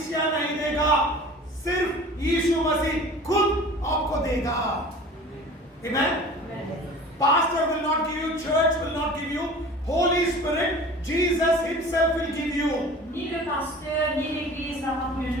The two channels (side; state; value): both; normal; correlation 0.42